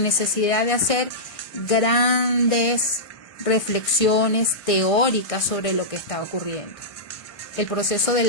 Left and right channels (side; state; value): right; late; 1.5 ms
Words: necesidad de hacer grandes reflexiones teóricas sobre lo que está ocurriendo. El proceso